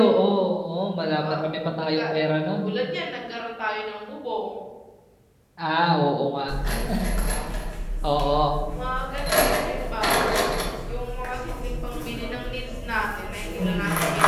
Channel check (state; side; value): identical; both; correlation 1.00